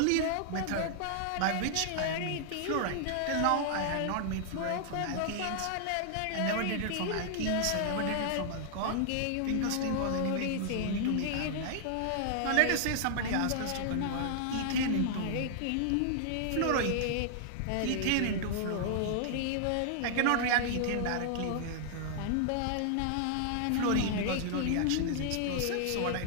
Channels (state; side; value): different; both; correlation -0.01